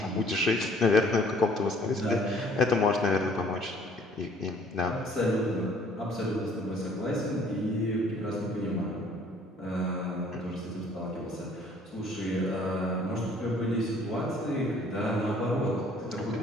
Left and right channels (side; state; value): both; normal; correlation 0.57